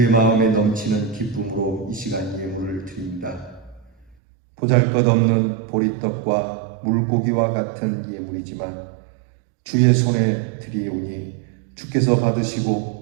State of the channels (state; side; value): drops out; left; at 4.2 s